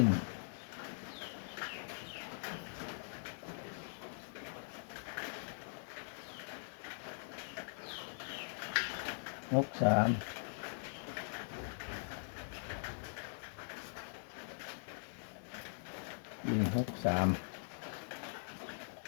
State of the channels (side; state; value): right; silent; digital silence